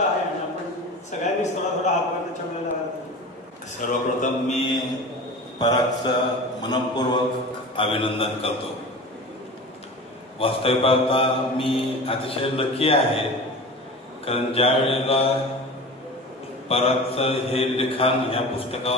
आहे आणि आपण सगळ्यांनीच थोडा हातभार त्याच्यामुळे लावायला. सर्वप्रथम मी परागचं मनपूर्वक अभिनंदन करतो. वास्तविक पाहता मी अतिशय लकी आहे, कारण ज्या वेळेला परागचं हे लिखाण ह्या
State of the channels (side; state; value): both; normal; correlation 0.34